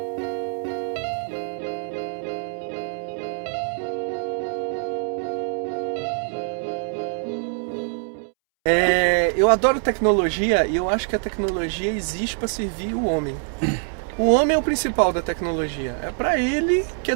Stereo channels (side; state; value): left; silent; 63 dB below the other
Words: Eu adoro tecnologia e eu acho que a tecnologia existe para servir o homem. O homem é o principal da tecnologia. É para ele que a